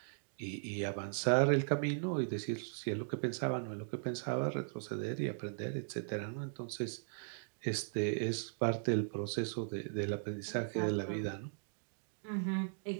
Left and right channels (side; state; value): left; silent; digital silence